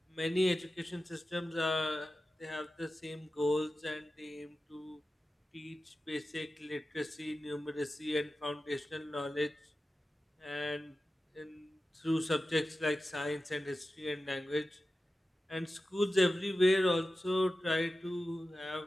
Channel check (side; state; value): both; normal; correlation 0.94